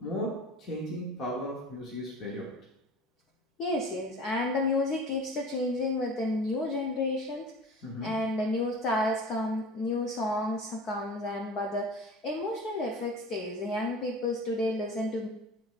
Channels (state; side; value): normal; both; correlation 0.38